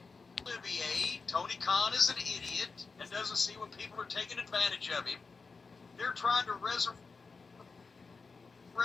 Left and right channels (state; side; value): quieter; right; 4.5 dB